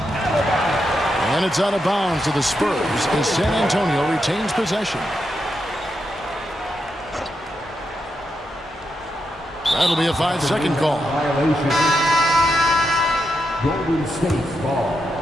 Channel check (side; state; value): both; normal; correlation 0.84